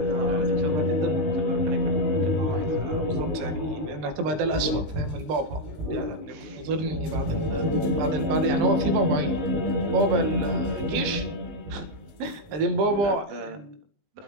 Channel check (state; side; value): late; left; 19 ms